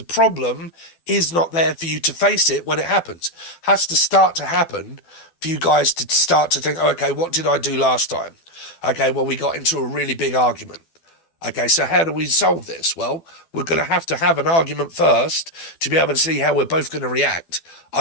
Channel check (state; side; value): late; right; 12 ms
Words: problem is not there for you to face it when it happens. It has to start to happen for you guys to start to think, oh, okay, what did I do last time? Okay, well, we got into a really big argument. Okay, so how do we solve this? Well, we're going to have an argument first to be able to see how we're both going to react.